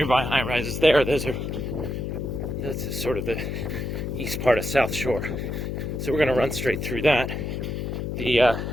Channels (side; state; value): left; noise; hum, 3 dB below the sound